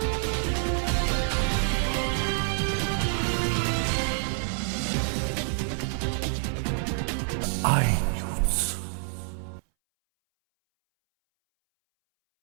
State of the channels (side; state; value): left; silent; 60 dB below the other